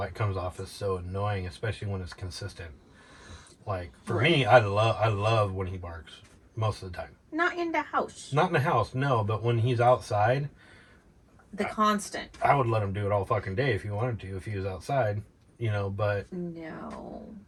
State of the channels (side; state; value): both; identical; correlation 1.00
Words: it comes off as so annoying, especially when it's consistent. Like for me, I love when he barks most of the time. Not in the house. Not in the house, no. But when he's outside, constant. I would let him do it all fucking day if he wanted to. If he was outside, you know. But no,